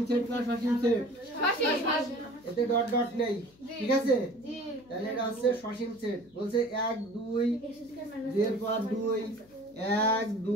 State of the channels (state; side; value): noise; left; hum, 28 dB below the sound